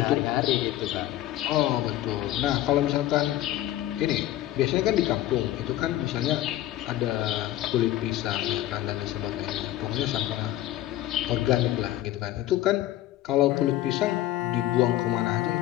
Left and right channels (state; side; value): quieter; right; 14.0 dB